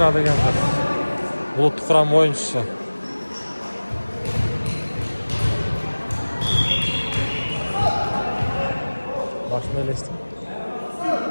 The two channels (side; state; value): both; inverted; correlation -1.00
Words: деген кыз. Булуттук курам оюнчусу. Башына элестим.